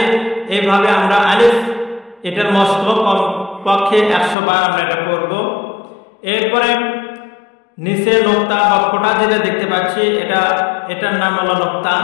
এইভাবে আমরা আলিফ, এটার মস্ত কমপক্ষে 100 বার আমরা এটা পড়ব। এরপরে নিচে নোক্তা বা ফোঁটা যেটা দেখতে পাচ্ছি এটার নাম হলো নোক্তা।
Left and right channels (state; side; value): drops out; right; at 4.4 s